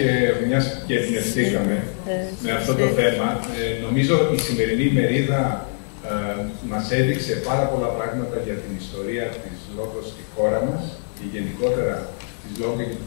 Μιας και εμπνευστήκαμε με αυτό το θέμα, νομίζω η σημερινή ημερίδα μας έδειξε πάρα πολλά πράγματα για την ιστορία της λόγω στη χώρα μας και γενικότερα της λόγω και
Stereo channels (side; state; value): right; silent; 63 dB below the other